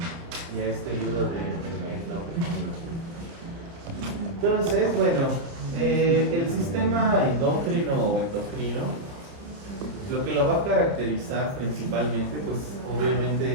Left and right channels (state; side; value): late; left; 30 ms